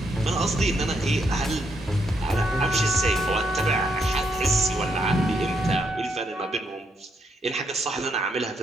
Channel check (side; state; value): both; normal; correlation 0.77